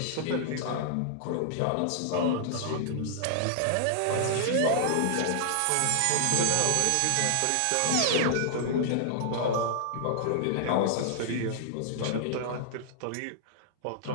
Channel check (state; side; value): different; both; correlation -0.01